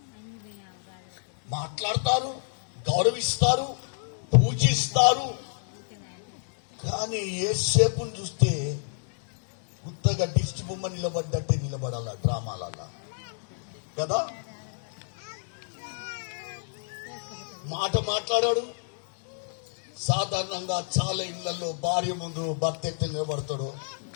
మాట్లాడతారు, గౌరవిస్తారు, పూజిస్తారు. కానీ యేసేపుని చూస్తే ఉత్తగా దిష్టి బొమ్మ నిలబడ్డట్టే నిలబడాల డ్రామాలల్లా కదా. మాట మాట్లాడాడు. సాధారణంగా చాలా ఇళ్లలో భార్య ముందు భర్త ఎట్లా నిలబడతాడు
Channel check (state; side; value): silent; right; 59 dB below the other